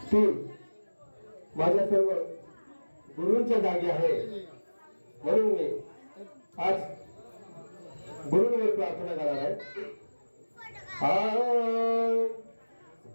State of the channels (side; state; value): both; inverted; correlation -1.00